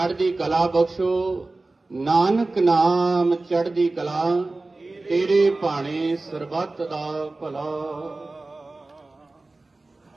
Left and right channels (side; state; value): left; quieter; 3.2 dB